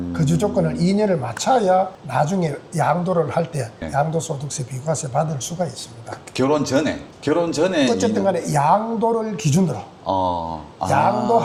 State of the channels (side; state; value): both; identical; correlation 1.00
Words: 거주 조건을 2년을 맞춰야 나중에 양도를 할 때 네. 양도소득세 비과세 받을 수가 있습니다. 결혼 전에 어쨌든 간에 양도를 기준으로